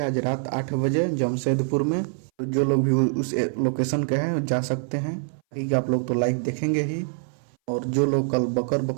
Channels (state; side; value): silent; left; 60 dB below the other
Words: आज रात 8 बजे जमशेदपुर में। तो जो लोग भी उस लोकेशन के हैं जा सकते हैं, कि आप लोग तो लाइव देखेंगे ही। और जो लोग कल बकर